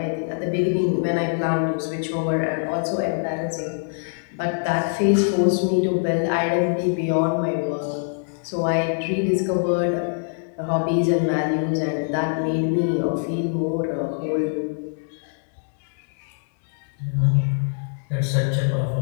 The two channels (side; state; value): right; silent; digital silence